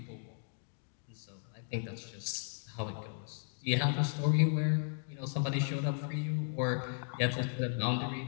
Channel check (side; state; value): right; silent; digital silence